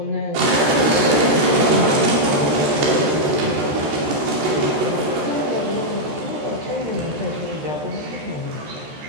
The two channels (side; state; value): left; late; 14 ms